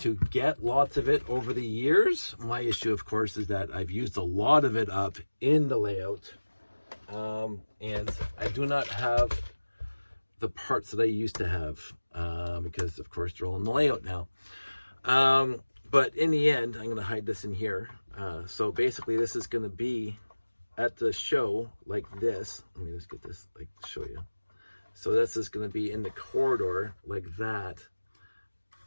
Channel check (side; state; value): both; inverted; correlation -1.00